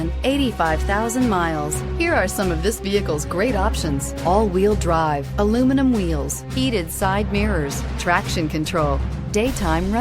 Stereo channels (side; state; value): both; identical; correlation 1.00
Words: 85,000 miles. Here are some of this vehicle's great options: all-wheel drive, aluminum wheels, heated side mirrors, traction control, daytime